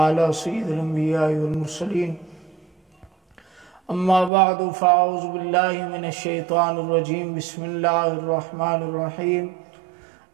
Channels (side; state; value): left; drops out; at 4.3 s